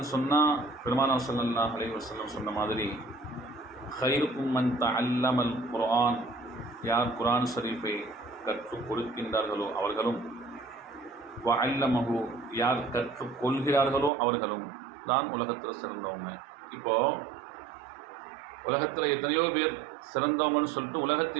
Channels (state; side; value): drops out; left; at 14.1 s